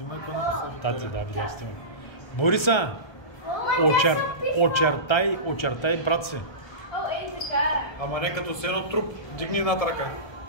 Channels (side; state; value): right; late; 1.2 ms